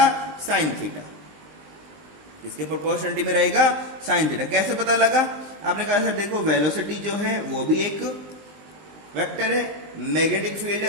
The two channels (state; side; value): late; left; 20 ms